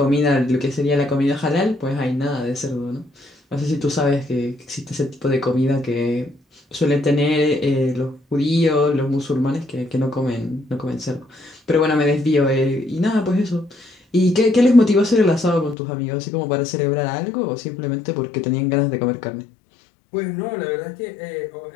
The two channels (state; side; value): drops out; right; at 15.8 s